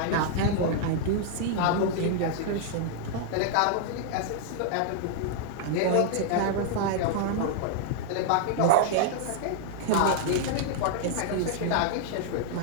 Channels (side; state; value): both; different; correlation -0.01